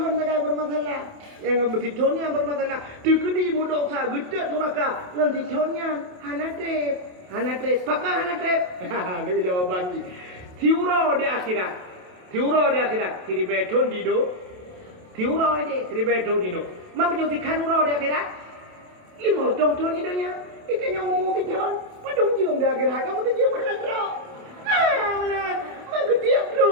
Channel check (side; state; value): left; late; 28 ms